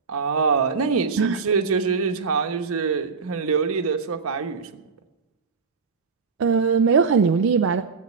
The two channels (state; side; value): quieter; left; 5.2 dB